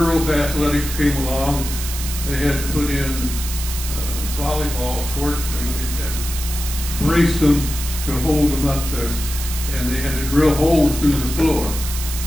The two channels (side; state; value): right; noise; hiss, 7 dB below the sound